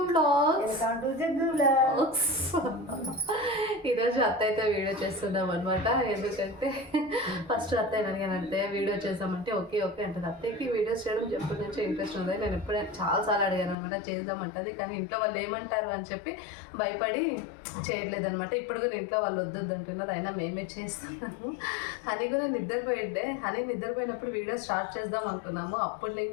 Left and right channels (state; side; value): drops out; right; at 13.8 s